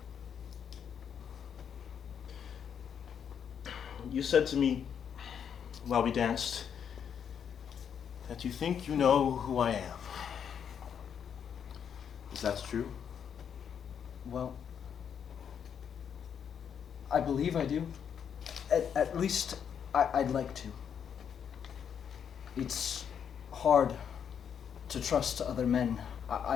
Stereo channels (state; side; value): quieter; right; 7.9 dB